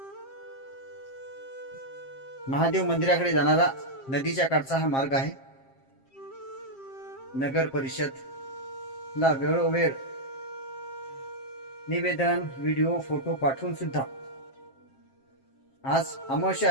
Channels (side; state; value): right; late; 7.5 ms